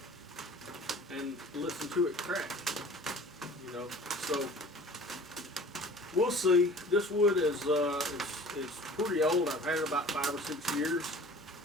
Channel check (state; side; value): normal; both; correlation 0.45